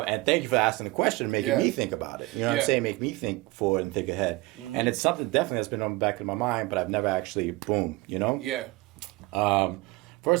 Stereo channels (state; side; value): quieter; left; 22.2 dB